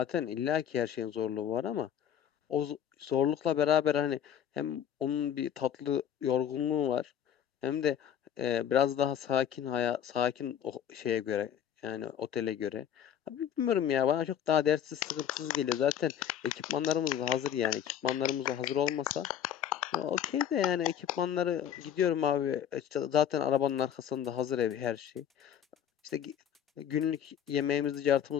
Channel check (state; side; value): quieter; right; 9.5 dB